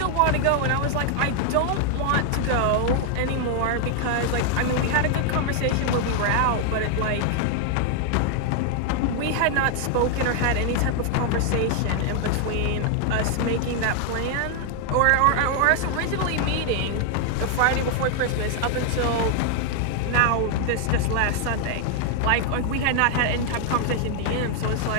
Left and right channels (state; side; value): different; both; correlation 0.00